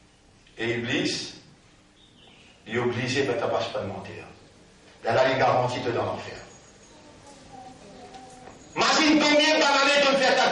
Et Iblis, il est obligé de ne pas mentir. Là, il garantit de dans l'enfer. Imagine combien d'années de faire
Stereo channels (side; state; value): both; identical; correlation 1.00